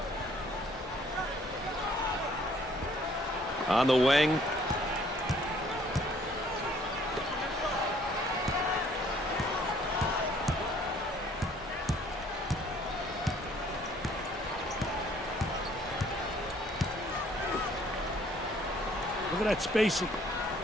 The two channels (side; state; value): both; normal; correlation 0.60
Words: On the wing. Look at that spacing.